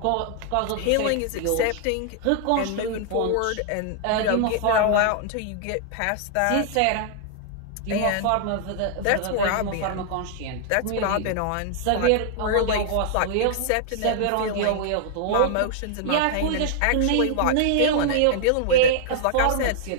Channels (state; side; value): different; both; correlation 0.00